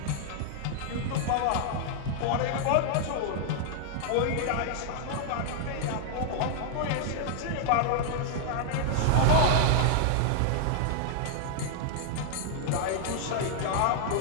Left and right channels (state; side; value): different; both; correlation -0.01